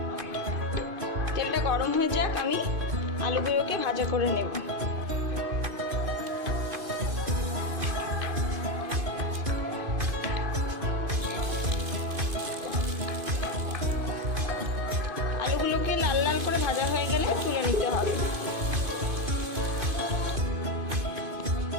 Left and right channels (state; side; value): late; left; 2.5 ms